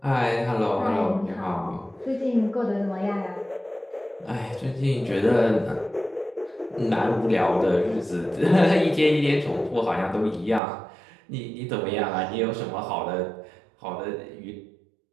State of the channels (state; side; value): drops out; left; at 10.6 s